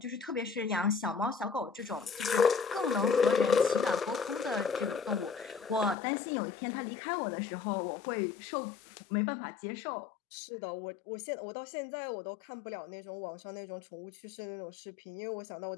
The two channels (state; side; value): drops out; right; at 6.0 s